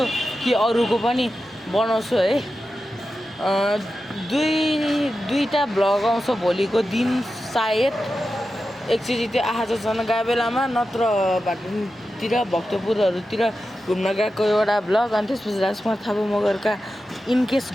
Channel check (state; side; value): normal; both; correlation 0.91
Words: कि अरूको पनि बनाउँछु है दुईटा भ्लग आउँछ भोलिको दिन सायद एकचोटि त्यो आहाजन गएको बेलामा नत्र भाटुङतिर भक्तपुरहरूतिर घुम्न गएको एउटा भ्लग अनि त्यसपछि राजकुमार थापा मगरका इनकेस